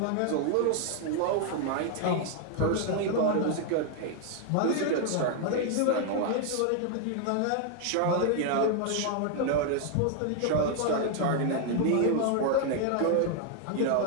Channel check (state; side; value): different; both; correlation 0.00